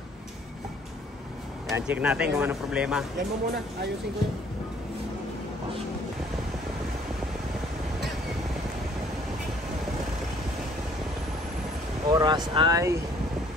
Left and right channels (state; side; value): normal; both; correlation 0.59